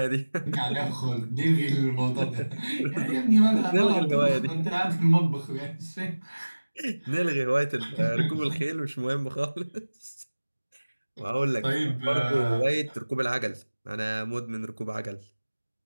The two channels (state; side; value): inverted; both; correlation -1.00